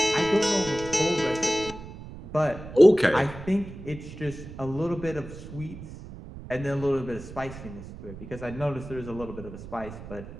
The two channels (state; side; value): noise; right; rumble, 13 dB below the sound